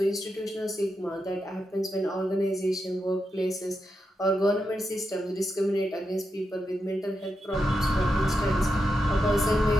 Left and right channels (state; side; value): normal; both; correlation 0.86